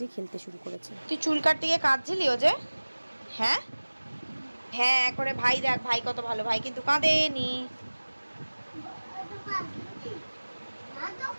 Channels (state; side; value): inverted; both; correlation -1.00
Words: খেলতে শুরু করেছে। তুই চুল কাটতে গিয়ে কাঁদছিলি ও যে? হ্যাঁ হ্যাঁ করে ভাই, দেখ ভাই কত ভালো, ভাই কিন্তু কাঁদেনি।